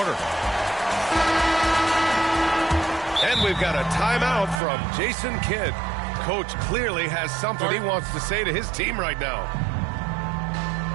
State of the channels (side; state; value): left; drops out; at 4.6 s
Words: And we've got a timeout from Jason Kidd. Coach clearly has something he wants to say to his team right now.